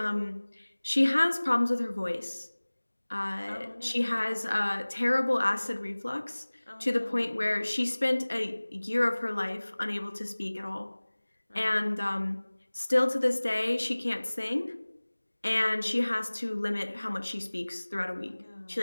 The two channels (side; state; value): both; inverted; correlation -1.00